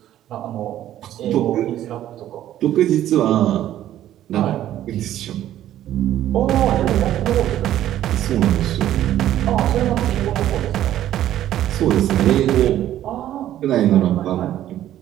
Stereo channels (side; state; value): left; quieter; 12.4 dB